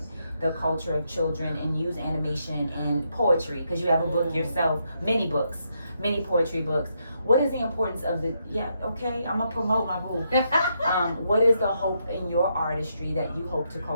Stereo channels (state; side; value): inverted; both; correlation -0.79